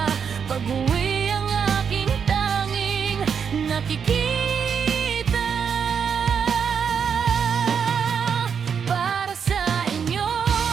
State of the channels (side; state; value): left; quieter; 6.9 dB